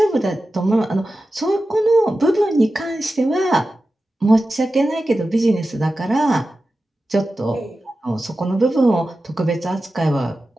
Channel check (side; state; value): both; normal; correlation 0.93